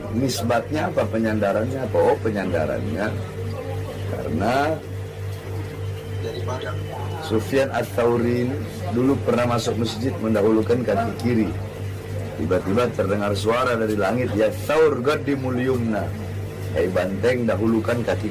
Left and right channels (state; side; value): identical; both; correlation 1.00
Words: Nisbatnya apa? Penyandarannya apa? Oh, penyandarannya karena Sufyan Ats-Tsauri dulu pernah masuk masjid mendahulukan kaki kiri. Tiba-tiba terdengar suara dari langit, ya Tsaur qaddim al-yumna, hai banteng dahulukan